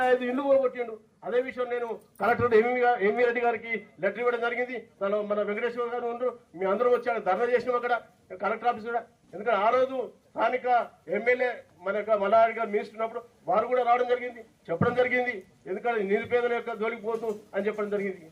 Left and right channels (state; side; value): identical; both; correlation 1.00